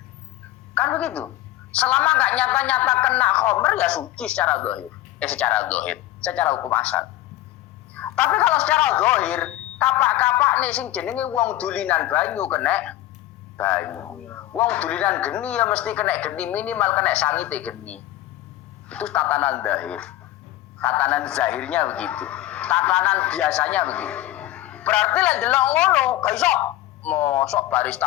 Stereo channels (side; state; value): right; quieter; 14.9 dB